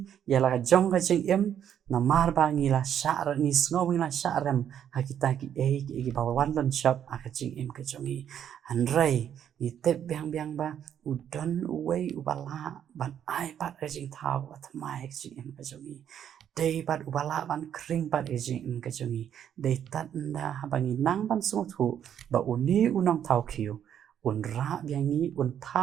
ya la jong ka jing im na mar ba ngi la sha ra ni sngo ngi la sha ram ha kita ki e ba wan lon shop a ka jing im ka chongi an rai ni te biang ba u don u wei u bala ban ai pat ka jing thao at mai ka jing im ka chongi dei pat u bala ban kring pat ka jing im ka chongi dei tat nda ha bangi nang ban so thu ba u ni u nong thao khiu un ra biangi un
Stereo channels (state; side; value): quieter; left; 9.4 dB